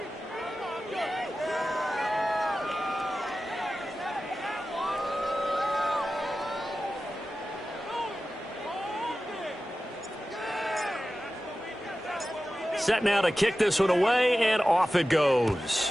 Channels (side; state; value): both; normal; correlation 0.94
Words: Set now to kick this one away, and off it